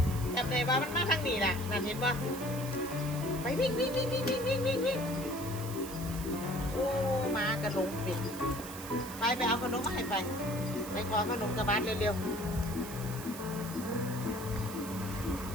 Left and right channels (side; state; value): right; noise; hiss, 12 dB below the sound